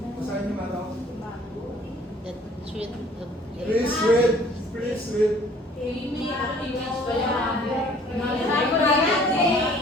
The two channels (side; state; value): both; normal; correlation 0.55